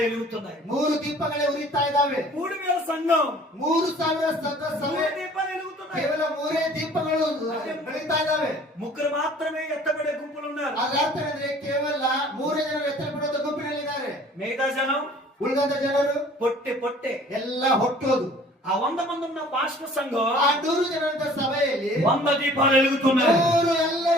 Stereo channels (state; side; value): normal; both; correlation 0.51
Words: వెలుగుతున్నాయి. 3 ದೀಪಗಳೇ ಉರಿತಾ ಇದ್ದಾವೆ. 3000 సంఘం, 3000 ಸಂಘ ಸಭೆ, 3 దీపాలు వెలుగుతున్నాయి. ಕೇವಲ 3 ದೀಪಗಳು ಬೆಳೀತಾ ಇದ್ದಾವೆ. ముగ్గురు మాత్రమే ఎత్తబడే గుంపులు ఉన్నారు. ಅದರ ಅರ್ಥ ಅಂದ್ರೆ ಕೇವಲ 3 ಜನರು ಎತ್ತರಪಡುವ ಗುಂಪಿನಲ್ಲಿದ್ದಾರೆ. మిగతా జనం ಉಳಿದಂತ ಜನರು పొట్టే ಎಲ್ಲ ಹೊಟ್ಟೋದು. ఆ 100 మంది ఉన్న పాస్టర్ సంఘం ಆ 100 ಜನರ ಸಭೆಯಲ್ಲಿ 100 దీపాలు వెలుగుతున్నాయి. 100